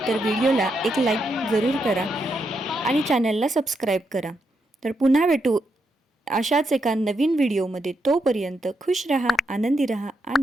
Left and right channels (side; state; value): both; normal; correlation 0.81